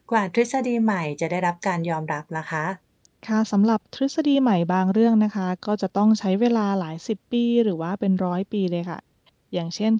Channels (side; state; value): both; identical; correlation 1.00